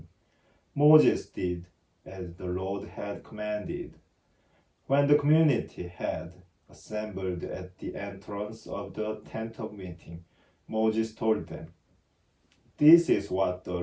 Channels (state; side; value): identical; both; correlation 1.00